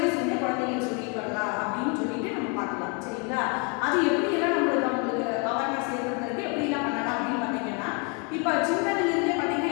குழந்தைங்களுக்கு சொல்லிட்டு வரலாம் அப்படின்னு சொல்லிட்டு நம்ம பார்க்கலாம். சரிங்களா? அது எப்படியெல்லாம் அவங்களுக்கு அவேர்னஸ் ஏற்படுத்துறதுக்கு எப்படிலாம் பண்ணலாம் அப்படின்னு பார்த்தீங்கன்னா இப்போ சின்னதுலேருந்தே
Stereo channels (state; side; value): quieter; right; 32.9 dB